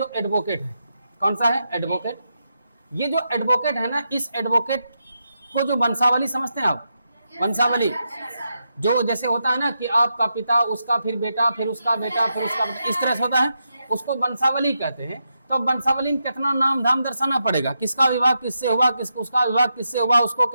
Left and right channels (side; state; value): both; inverted; correlation -0.85